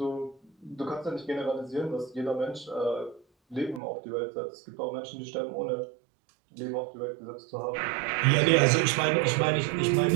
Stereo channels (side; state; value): left; drops out; at 3.8 s